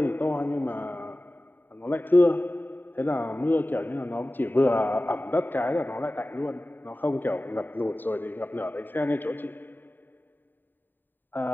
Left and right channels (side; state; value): right; late; 0.092 ms